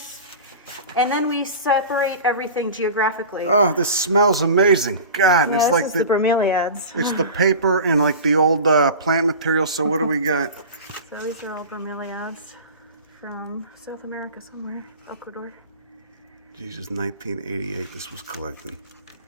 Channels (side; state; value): both; inverted; correlation -0.34